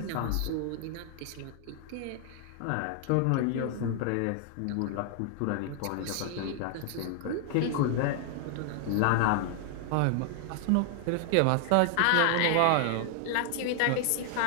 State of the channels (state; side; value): different; both; correlation 0.00